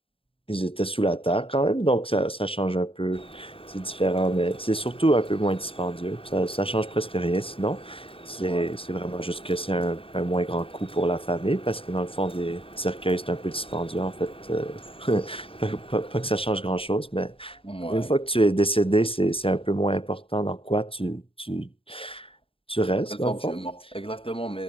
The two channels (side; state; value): right; late; 0.27 ms